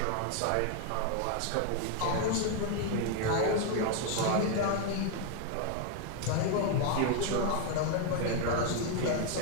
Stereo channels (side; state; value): both; different; correlation 0.00